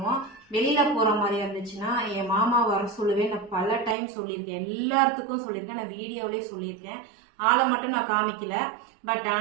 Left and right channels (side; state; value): left; drops out; at 4.0 s